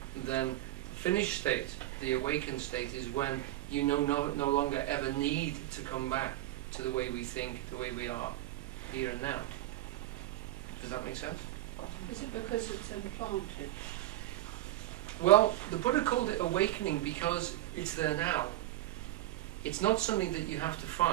then the finished state, the awakened state, is when you no longer ever need to come back to the way we think, the way we are, here and now. Does that make sense? Is it because it's implanted? Well, the Buddha called it awakening because it's there now. It's not something that you have to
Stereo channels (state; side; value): quieter; left; 15.5 dB